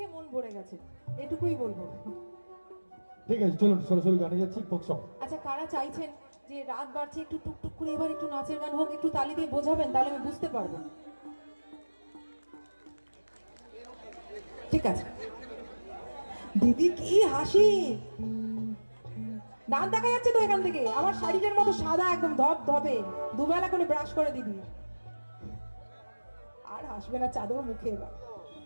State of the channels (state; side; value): inverted; both; correlation -1.00